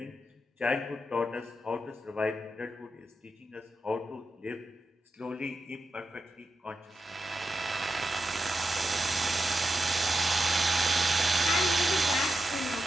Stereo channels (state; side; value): normal; both; correlation 0.88